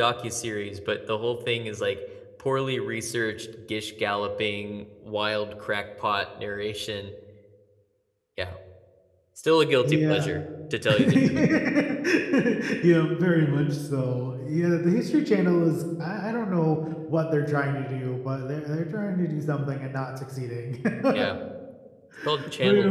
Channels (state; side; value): identical; both; correlation 1.00